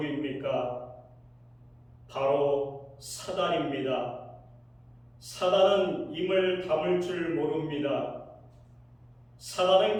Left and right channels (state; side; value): identical; both; correlation 1.00